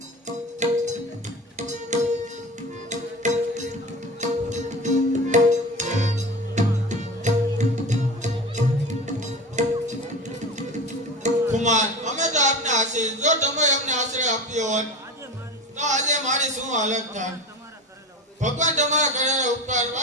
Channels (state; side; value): normal; both; correlation 0.31